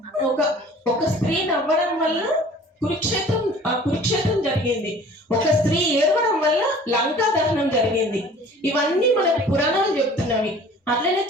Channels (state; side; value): normal; both; correlation 0.48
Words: ఒక స్త్రీ నవ్వడం వల్ల కురుక్షేత్రం జరిగింది, ఒక స్త్రీ ఏడవడం వల్ల లంకా దహనం జరిగింది. ఇవన్నీ మనకు పురాణాలు చెప్తున్నవి. అట్లనే